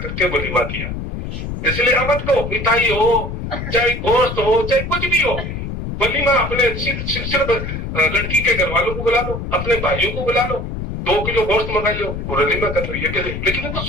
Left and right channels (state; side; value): noise; left; rumble, 6 dB below the sound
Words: کے ولیمہ کیا. اس لیے امت کو مٹھائی ہو چاہے گوشت ہو چاہے کچھ بھی ہو, ولیمہ اپنے صرف لڑکی کے گھر والوں کو بلا لو, اپنے بھائیوں کو بلا لو, 2 کلو گوشت منگا لو, ولیمہ کر لو. یہ کہ لیکن ان کو